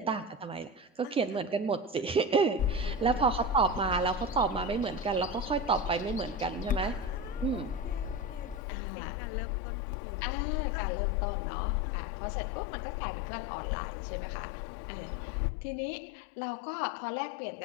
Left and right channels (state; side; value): drops out; right; at 8.6 s